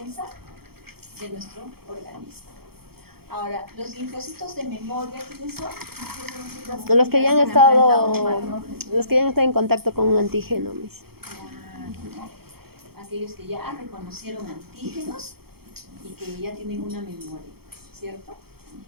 de nuestro organismo. Ahora, los linfocitos de memoria, ¿quiénes son? Los que ya han estado en contacto con un antígeno, mis. Aquellos que ya reconocieron antígenos y que ya tienen una memoria, ¿cierto?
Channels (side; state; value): left; late; 0.96 ms